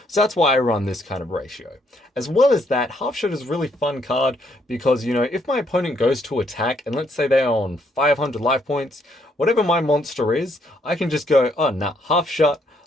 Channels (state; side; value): normal; both; correlation 0.71